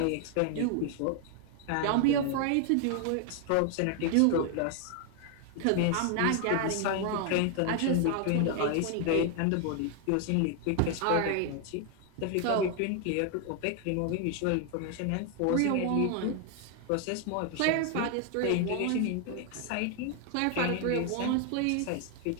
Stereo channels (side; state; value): both; different; correlation 0.00